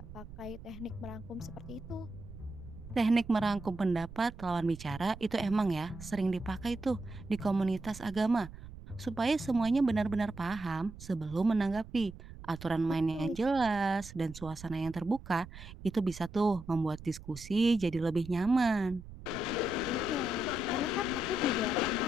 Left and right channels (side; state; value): right; noise; rumble, 14 dB below the sound